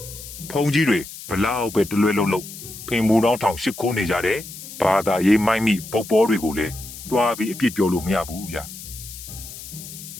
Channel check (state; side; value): noise; left; hiss, 13 dB below the sound